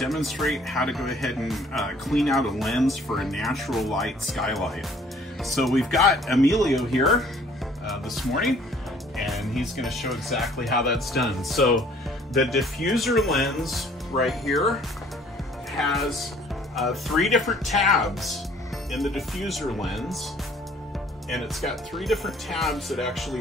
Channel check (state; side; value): normal; both; correlation 0.57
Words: how to go ahead and clean out a lens for a natural light skylight. So we've got Emilio here this morning, and he's going to show exactly how that's done. So the diffuser lens right here has 3 different tabs in the diffuser lens, and it's got 3 different tabs that